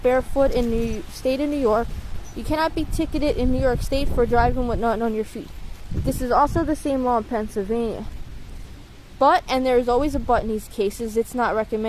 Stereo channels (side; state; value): both; identical; correlation 1.00